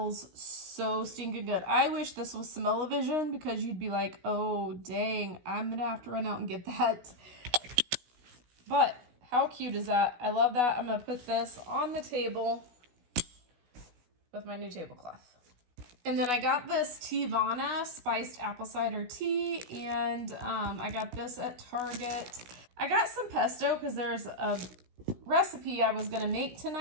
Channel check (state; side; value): late; left; 16 ms